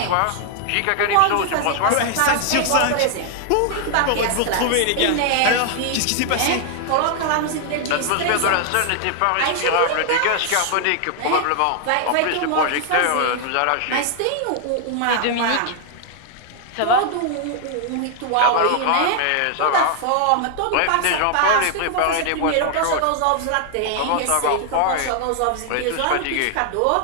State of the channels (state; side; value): different; both; correlation 0.00